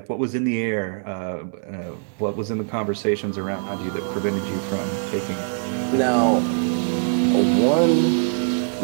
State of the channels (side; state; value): left; silent; 60 dB below the other